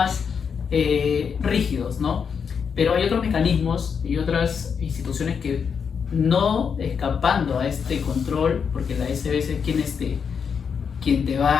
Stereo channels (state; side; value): quieter; right; 6.5 dB